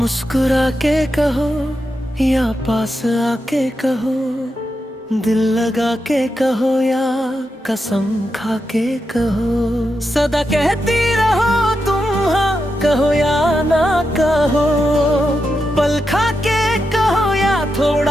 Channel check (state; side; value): normal; both; correlation 0.87